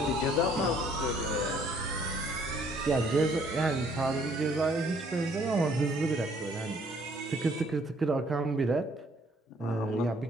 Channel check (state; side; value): normal; both; correlation 0.63